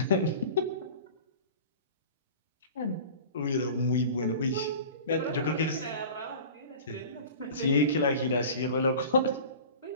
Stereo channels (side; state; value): both; inverted; correlation -0.39